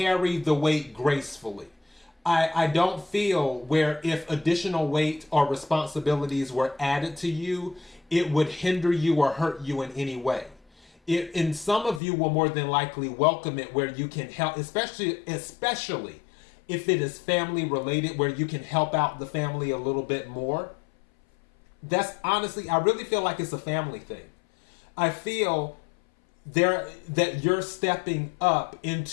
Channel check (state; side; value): drops out; right; at 12.0 s